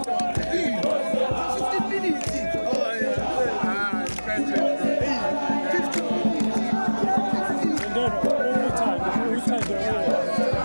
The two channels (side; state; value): both; inverted; correlation -1.00